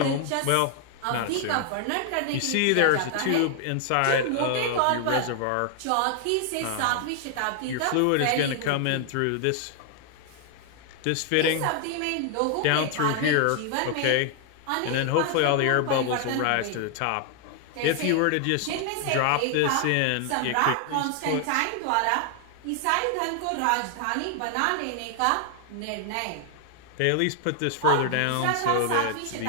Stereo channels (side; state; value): both; different; correlation 0.00